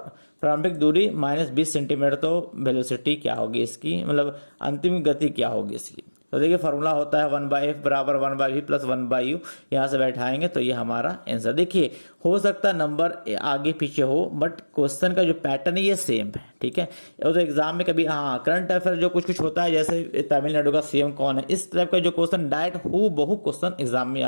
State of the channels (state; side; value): inverted; both; correlation -1.00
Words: प्रारंभिक दूरी -20 सेंटीमीटर। तो वेलोसिटी क्या होगी इसकी, मतलब अंतिम गति क्या होगी इसकी? तो देखिए फॉर्मूला होता है 1/f बराबर 1/v प्लस 1/u, यहाँ से बैठाएंगे तो ये हमारा आंसर। देखिए हो सकता है नंबर आगे पीछे हो, बट क्वेश्चन का जो पैटर्न है ये सेम है, ठीक है। और तो एग्जाम में कभी हाँ करंट अफेयर जो कुछ कुछ होता है, जैसे तमिलनाडु का सीएम कौन है, इस टाइप का जो क्वेश्चन डायरेक्ट हूबहू क्वेश्चन एग्जाम में